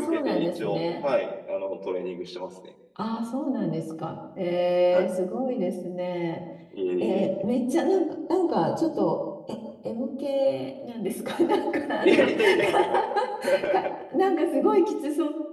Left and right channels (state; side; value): identical; both; correlation 1.00